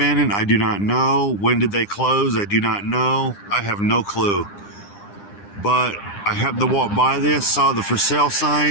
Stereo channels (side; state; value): right; late; 9.9 ms